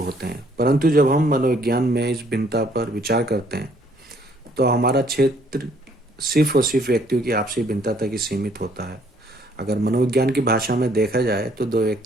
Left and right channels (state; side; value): normal; both; correlation 0.64